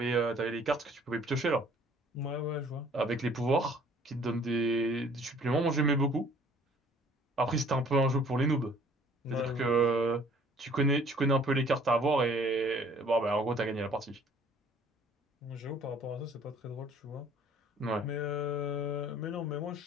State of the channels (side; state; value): both; normal; correlation 0.56